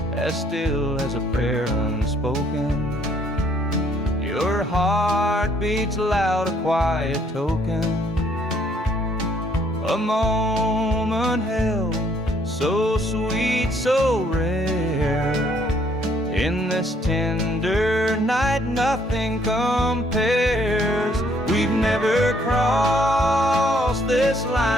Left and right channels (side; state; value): both; normal; correlation 0.66